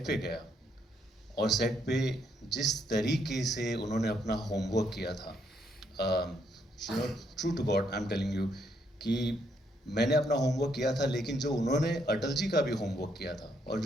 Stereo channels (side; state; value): both; normal; correlation 0.73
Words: पे गया और सेट पे जिस तरीके से उन्होंने अपना होमवर्क किया था, you know, true to God I am telling you कि मैंने अपना होमवर्क किया था, लेकिन जो उन्होंने अटल जी का भी होमवर्क किया था और